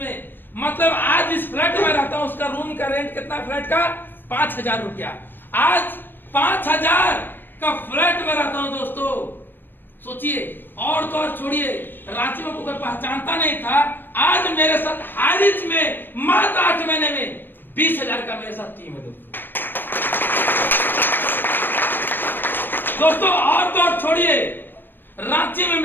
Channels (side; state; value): right; late; 0.094 ms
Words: मतलब आज इस फ्लैट में रहता हूं, उसका रूम का रेंट कितना, फ्लैट का 5,000 रुपया। आज 5,000 का फ्लैट में रहता हूं दोस्तों, सोचिए। और तो और छोड़िए, रांची में कोई पहचानता नहीं था, आज मेरे साथ हारिज में मात्र 8 महीने में 20,000 का मेरे साथ टीम है दोस्तों। और तो और छोड़िए, रांची में